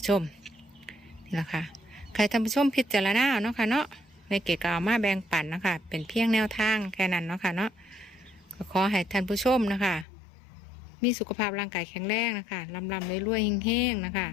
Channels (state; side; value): drops out; right; at 10.1 s